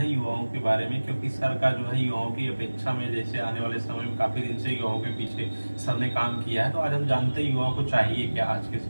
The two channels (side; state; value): both; inverted; correlation -1.00